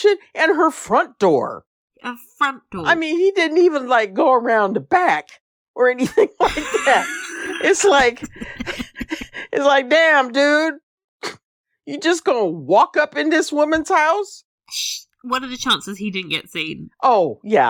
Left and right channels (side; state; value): both; identical; correlation 1.00